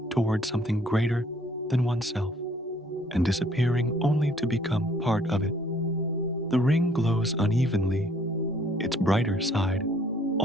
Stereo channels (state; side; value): normal; both; correlation 0.61